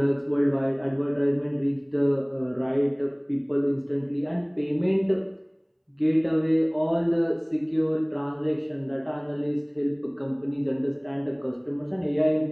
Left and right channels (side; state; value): both; identical; correlation 1.00